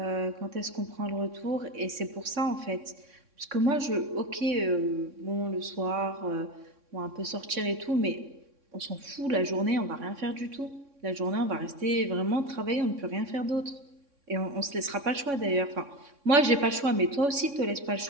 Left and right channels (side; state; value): left; late; 3.6 ms